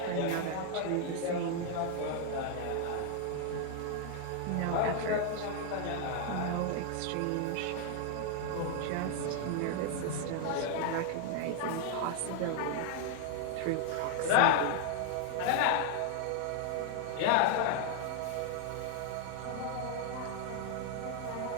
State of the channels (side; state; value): both; different; correlation 0.00